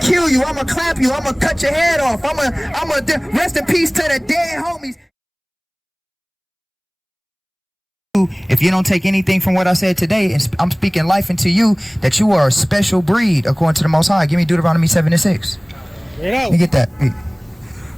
kill you. I'ma clap you. I'ma cut your head off. I'ma rest in peace to the dead homies. If you don't take anything from what I said today, and I'm speaking life into you, that you are a special breed according to the Most High. Give me Deuteronomy 7:6. Let me get that.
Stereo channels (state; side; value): identical; both; correlation 1.00